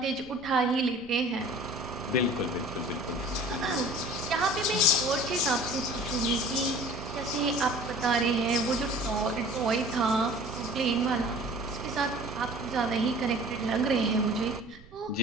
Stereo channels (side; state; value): right; noise; rumble, 22 dB below the sound